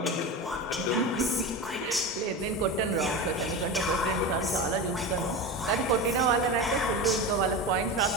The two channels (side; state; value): both; normal; correlation 0.24